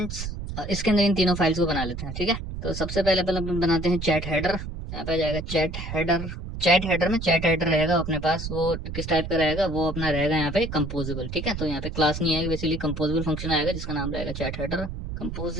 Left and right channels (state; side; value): noise; right; rumble, 7 dB below the sound